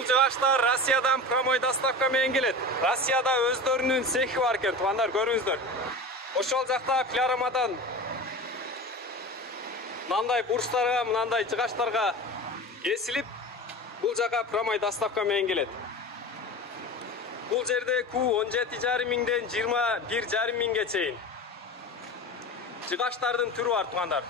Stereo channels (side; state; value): both; normal; correlation 0.31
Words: жыгачтар Россиядан прямой доставка менен келет. Россияда өздөрүнүн цехи бар экен, туугандар, көрүңүздөр. Ошол жакта пилорамадан мынандай бурчтарга, мынандай жыгачтарга кесилип, бул жака прямой доставка менен келет. Бул жерде Q 17,5 миңден 21,5 миңге чейин жыгачтардын түрү бар, туугандар.